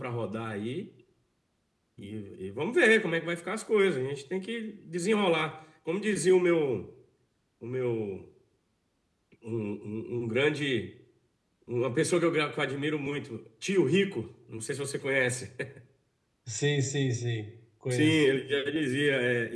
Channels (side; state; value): both; identical; correlation 1.00